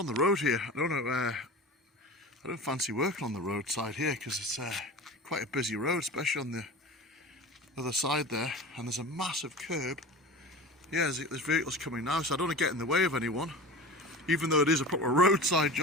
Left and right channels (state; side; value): normal; both; correlation 0.34